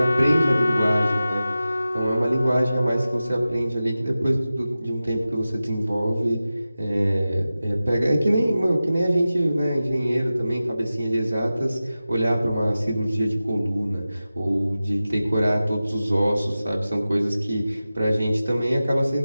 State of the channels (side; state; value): both; inverted; correlation -0.95